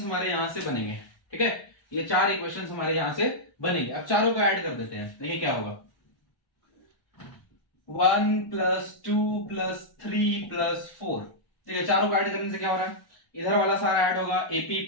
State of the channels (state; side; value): late; right; 1.1 ms